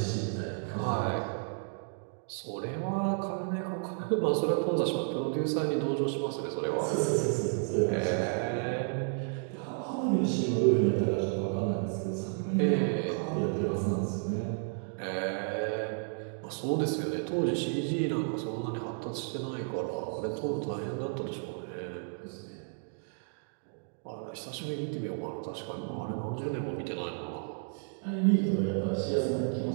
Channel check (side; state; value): left; silent; 56 dB below the other